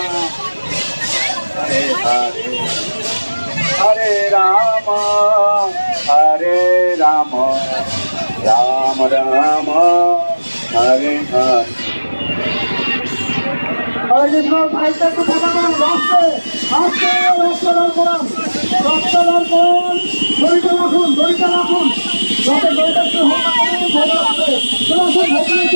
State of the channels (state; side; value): inverted; both; correlation -1.00